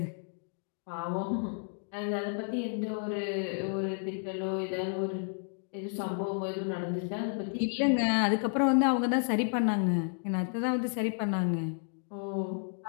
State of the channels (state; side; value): silent; right; 57 dB below the other